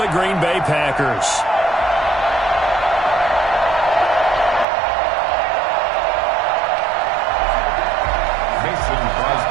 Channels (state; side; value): drops out; left; at 4.7 s